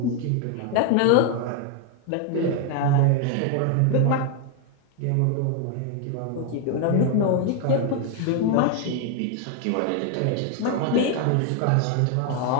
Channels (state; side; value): different; both; correlation 0.01